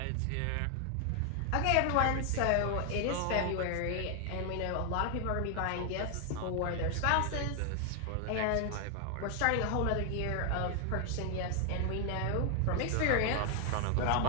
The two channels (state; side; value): different; both; correlation 0.00